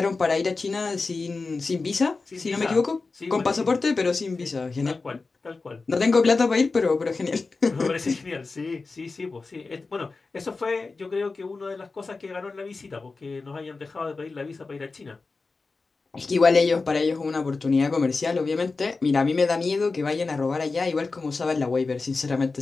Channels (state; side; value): quieter; right; 4.0 dB